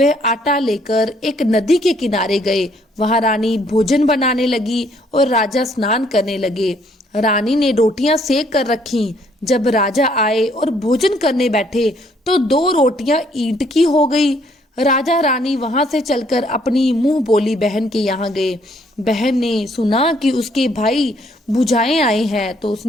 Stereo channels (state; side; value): normal; both; correlation 0.66